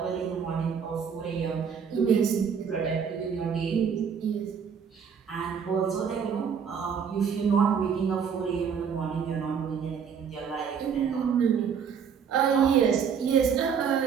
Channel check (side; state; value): left; quieter; 6.9 dB